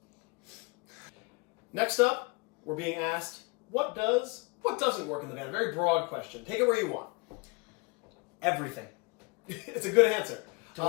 Next up, we're being asked, what doesn't work in the van? Very broad question. Take it where you want. Everything. It's a good answer. To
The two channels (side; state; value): right; quieter; 28.7 dB